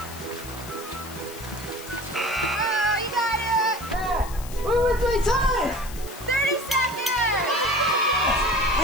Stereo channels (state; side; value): noise; left; hiss, 15 dB below the sound